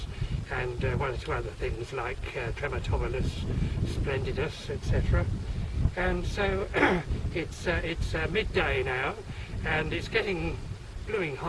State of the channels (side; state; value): both; identical; correlation 1.00